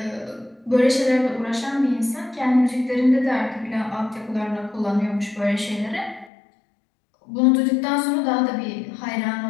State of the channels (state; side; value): drops out; right; at 6.3 s